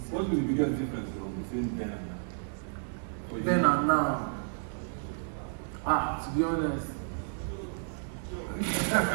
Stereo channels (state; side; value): silent; left; digital silence